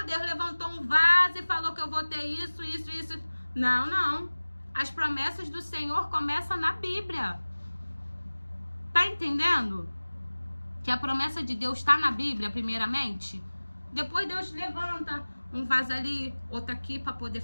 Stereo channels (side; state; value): both; inverted; correlation -1.00